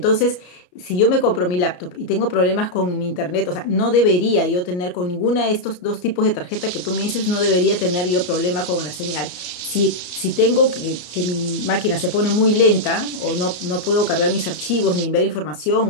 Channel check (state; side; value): late; right; 33 ms